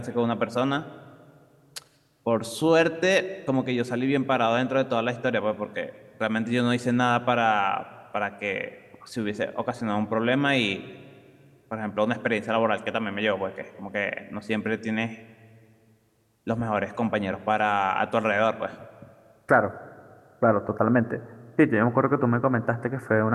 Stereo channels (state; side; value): identical; both; correlation 1.00